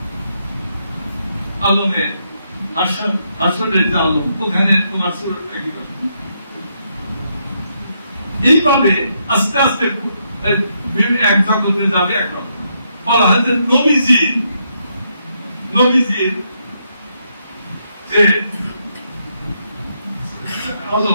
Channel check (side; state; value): both; inverted; correlation -0.78